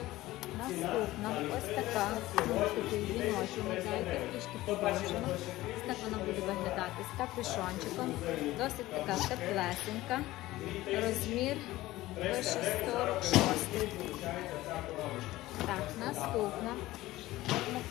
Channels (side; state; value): right; quieter; 17.2 dB